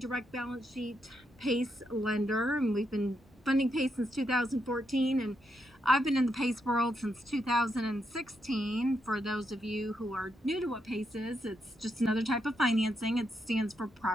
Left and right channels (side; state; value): both; normal; correlation 0.81